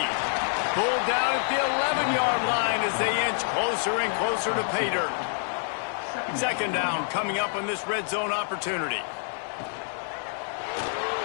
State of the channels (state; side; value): silent; right; 60 dB below the other